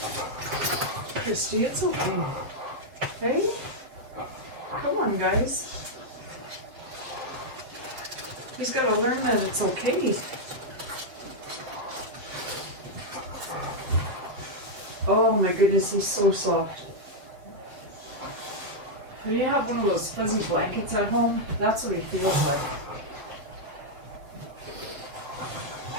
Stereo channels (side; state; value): left; late; 7.6 ms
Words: Christy, it's okay. Hey? Come on, guys. He's got to learn that it's okay. Oh my goodness, he's so soft. When you have one of those fuzzy blankets at home, that's what he feels like.